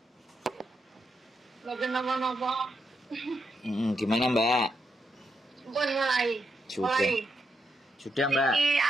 Mboten napa-napa. Gimana Mbak? Pun mulai. Sudah Mbak. Iki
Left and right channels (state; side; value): normal; both; correlation 0.82